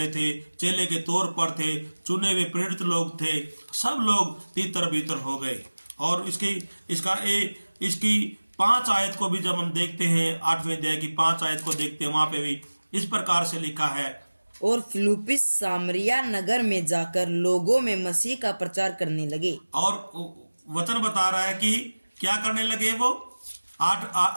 थे, चेले के तौर पर थे, चुने हुए प्रेरित लोग थे, सब लोग तीतर बीतर हो गए। और इसकी 5 आयत को भी जब हम देखते हैं, 8वें अध्याय की 5 आयत को देखते हैं, वहां पे भी इस प्रकार से लिखा है, और फिलिप्पुस सामरिया नगर में जाकर लोगों में मसीह का प्रचार करने लगे। और वचन बता रहा है कि क्या करने लगे वो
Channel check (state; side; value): inverted; both; correlation -1.00